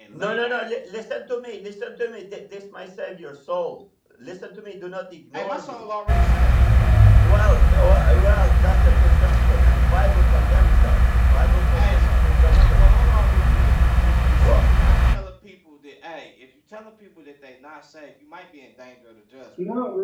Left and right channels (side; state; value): both; identical; correlation 1.00